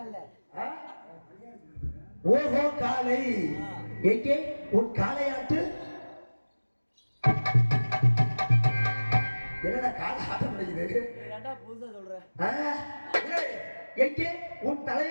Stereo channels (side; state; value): both; inverted; correlation -1.00